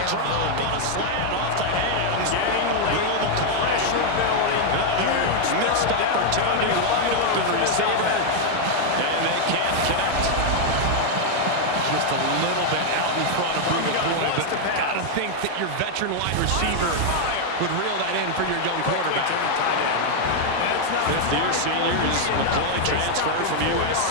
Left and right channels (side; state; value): both; different; correlation 0.00